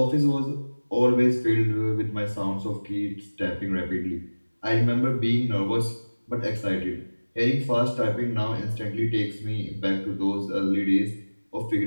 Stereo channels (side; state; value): both; inverted; correlation -1.00